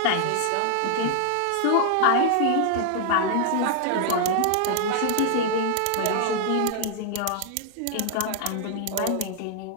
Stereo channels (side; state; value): both; different; correlation 0.00